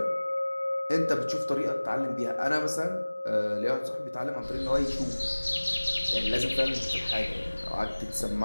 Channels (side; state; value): both; inverted; correlation -1.00